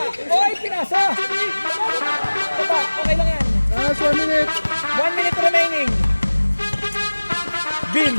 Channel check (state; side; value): inverted; both; correlation -1.00